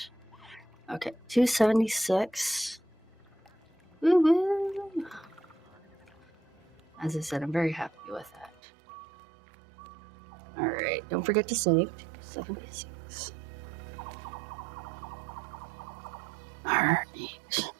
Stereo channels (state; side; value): drops out; left; at 8.6 s